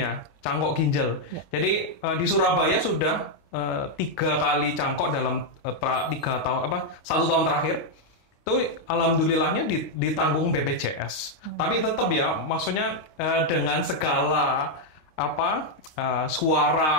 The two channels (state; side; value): late; right; 26 ms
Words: cangkok ginjal. Jadi di Surabaya sudah 3 kali cangkok dalam 1 tahun terakhir. Itu alhamdulillahnya ditanggung BPJS. Tapi tetap ya, maksudnya dengan segala